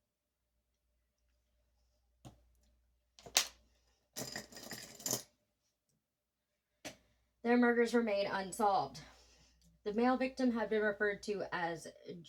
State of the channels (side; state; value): both; identical; correlation 1.00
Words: Their murders remain unsolved. The male victim had been referred to as